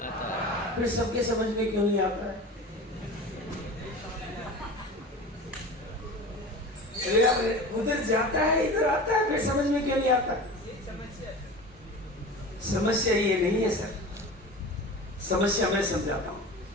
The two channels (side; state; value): both; normal; correlation 0.34